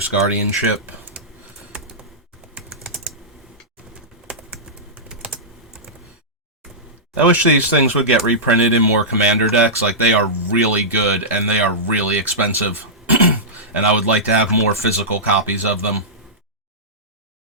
Guardianship. I wish these things would get reprinted in more commander decks. Like, they are really good and they are really expensive. And I would like to have more physical copies of them.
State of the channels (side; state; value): both; normal; correlation -0.14